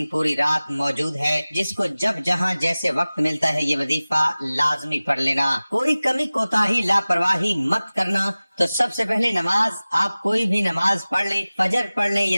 पूरी रात मौजूद है। जिसको जब जहाँ जैसे वक्त मिलता है ये वजीफा लाजमी पढ़ लेना। कोई कमी कोताही लापरवाही मत करना। तो सबसे पहले नमाज, आप कोई भी नमाज पढ़ लें, फजर पढ़ लें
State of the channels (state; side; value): inverted; both; correlation -0.98